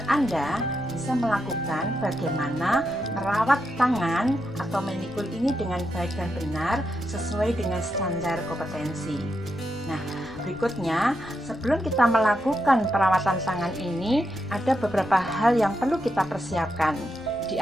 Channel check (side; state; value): left; noise; rumble, 20 dB below the sound